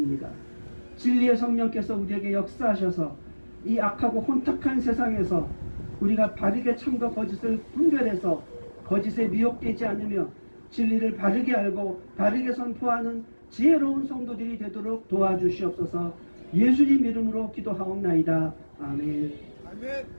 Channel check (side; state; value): both; inverted; correlation -1.00